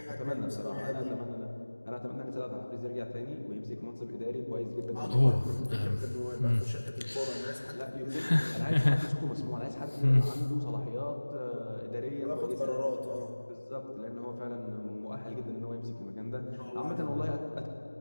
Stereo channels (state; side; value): inverted; both; correlation -1.00